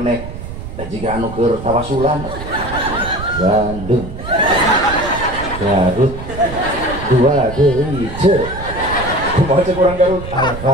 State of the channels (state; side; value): noise; right; rumble, 10 dB below the sound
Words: dan jika anu keur tawasulan Bandung Garut dua dice baca kurang Garut